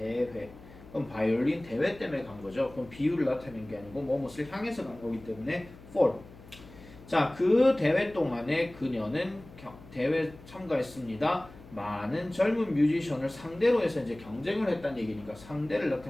그럼 바이올린 대회 때문에 간 거죠. 그럼 비유를 나타내는 게 아니고 뭐뭇을 향해서 간 거기 때문에 for. 자, 그 대회 동안에 그녀는 대회 참가했습니다. 많은 젊은 뮤지션을 상대로 해서 이제 경쟁을 했다는 얘기니까 상대를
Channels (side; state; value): left; noise; hum, 20 dB below the sound